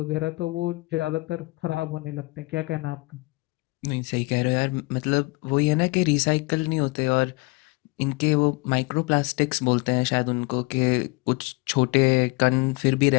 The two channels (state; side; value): quieter; right; 25.2 dB